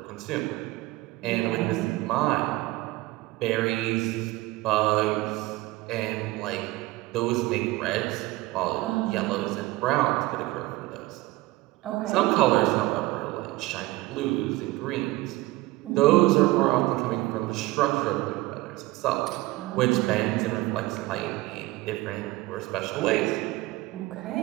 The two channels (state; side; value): quieter; left; 19.4 dB